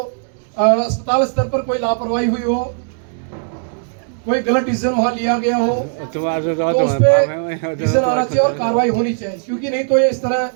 अस्पताल स्तर पर कोई लापरवाही हुई हो, कोई गलत डिसीजन वहां लिया गया हो, तो उस पर डिसीजन आना चाहिए और कार्रवाई होनी चाहिए। क्योंकि नहीं तो ये इस तरह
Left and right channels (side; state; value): left; silent; digital silence